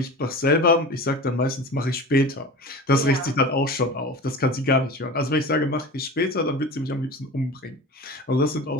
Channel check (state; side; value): normal; both; correlation 0.33